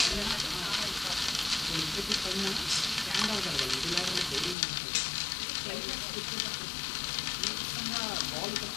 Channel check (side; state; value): right; drops out; at 4.5 s